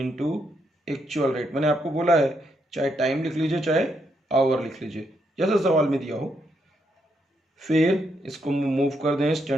actual rate. मैंने आपको बोला है चाहे टाइम लिख लीजिए चाहे आवर लिख लीजिए, जैसा सवाल में दिया हो। फिर इसको मूव कर दें।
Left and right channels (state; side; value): normal; both; correlation 0.78